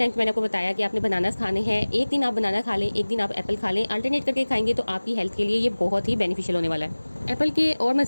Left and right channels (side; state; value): both; inverted; correlation -1.00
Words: मैंने आपको बताया कि आपने बनानास खाने हैं, एक दिन आप बनाना खा लें, एक दिन आप एप्पल खा लें, अल्टरनेट करके खाएंगे तो आपकी हेल्थ के लिए ये बहुत ही बेनिफिशियल होने वाला है। एप्पल के और